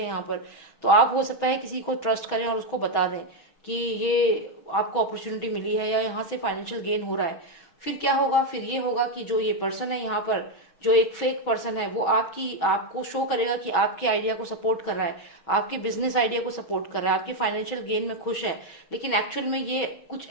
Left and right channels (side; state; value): right; late; 6.2 ms